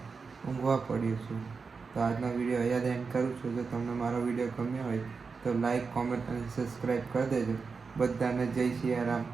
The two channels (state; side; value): quieter; left; 4.9 dB